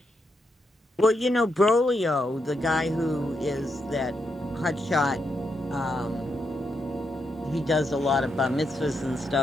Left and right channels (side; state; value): both; normal; correlation 0.82